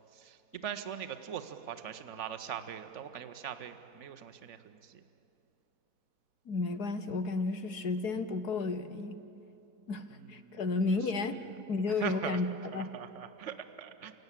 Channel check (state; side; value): late; right; 4.7 ms